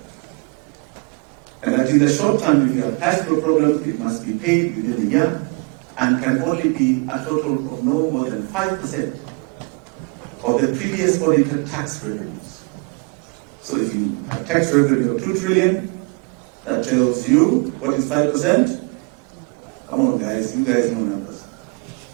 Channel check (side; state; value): left; quieter; 32.8 dB